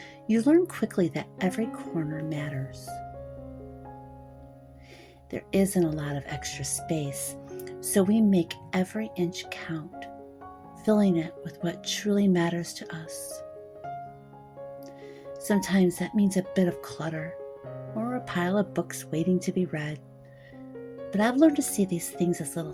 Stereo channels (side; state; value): both; identical; correlation 1.00